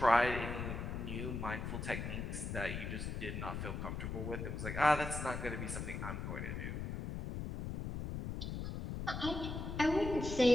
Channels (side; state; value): left; noise; rumble, 4 dB below the sound